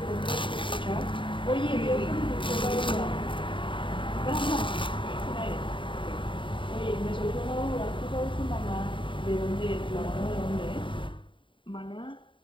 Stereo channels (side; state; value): right; late; 0.24 ms